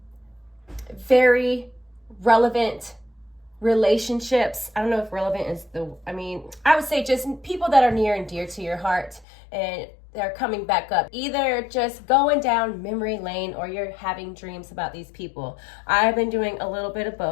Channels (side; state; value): right; drops out; at 9.2 s